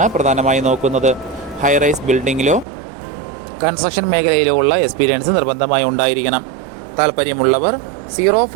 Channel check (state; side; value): drops out; left; at 2.7 s